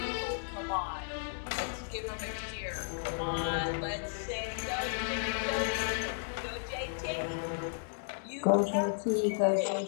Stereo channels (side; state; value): right; silent; digital silence